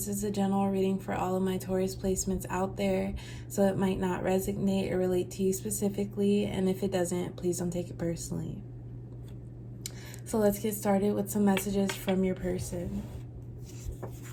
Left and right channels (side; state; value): both; identical; correlation 1.00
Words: is a general reading for all of my Taurus placements out there, so it might not resonate or relate to you specifically, and if it doesn't, please don't take it personally. So let's get started with some messages from your person.